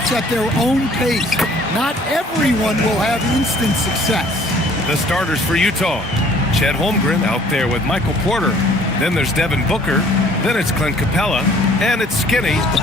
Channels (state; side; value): normal; both; correlation 0.56